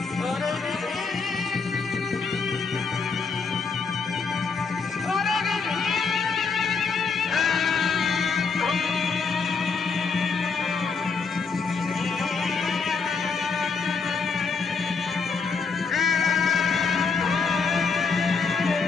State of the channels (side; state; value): right; quieter; 5.0 dB